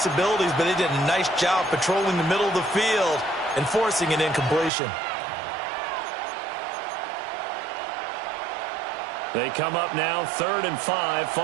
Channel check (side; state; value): left; drops out; at 4.7 s